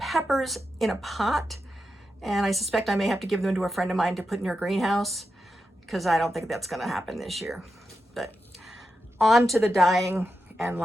in a pot, and I suspect I may have to give them to a friend of mine to put in her greenhouse because I don't think that's going to happen this year. But on to the dyeing and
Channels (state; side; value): normal; both; correlation 0.88